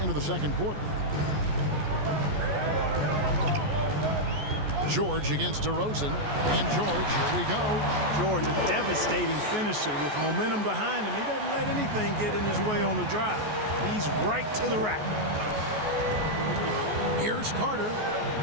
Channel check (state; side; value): late; left; 14 ms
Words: into the second quarter. George against DeRozan. And George, here we go. George, a devastating finisher with momentum behind him. He doesn't let anything get in his way on the drive. He's right to the rack. Here's Carter.